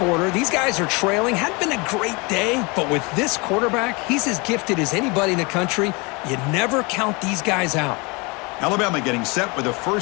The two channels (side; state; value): right; quieter; 28.0 dB